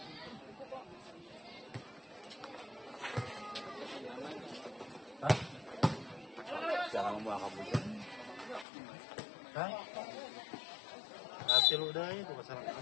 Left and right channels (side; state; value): right; drops out; at 8.7 s